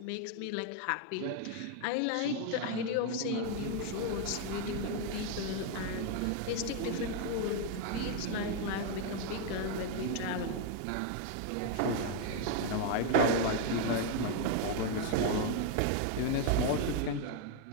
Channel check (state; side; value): different; both; correlation 0.00